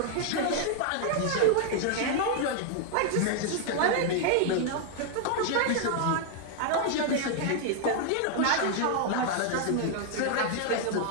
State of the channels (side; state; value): both; different; correlation 0.00